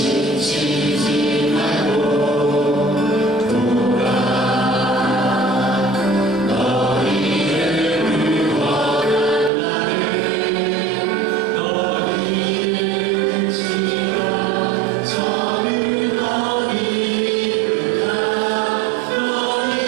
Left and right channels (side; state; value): left; drops out; at 9.5 s